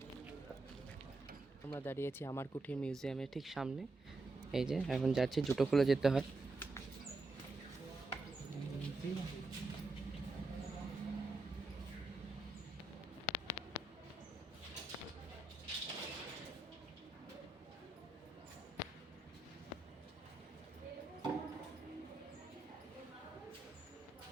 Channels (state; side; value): quieter; left; 3.2 dB